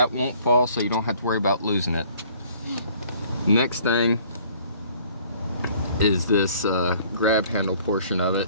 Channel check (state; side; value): inverted; both; correlation -0.57